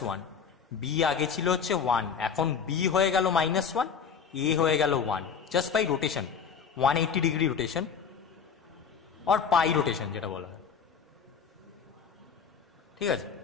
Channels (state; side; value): quieter; right; 6.6 dB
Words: B আগে ছিল হচ্ছে 1, এখন B হয়ে গেল -1, A হয়ে গেল 1, just by rotation, 180 degree rotation আর পাই রোটেশন যেটা বলা হয়। ঠিক আছে,